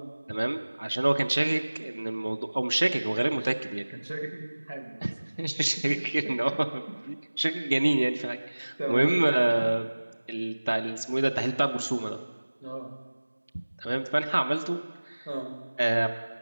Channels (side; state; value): both; inverted; correlation -1.00